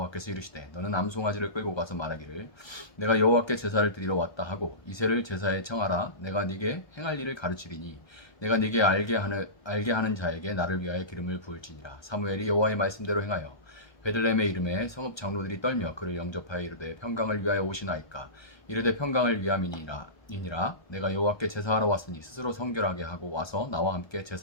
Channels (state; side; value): late; right; 1.2 ms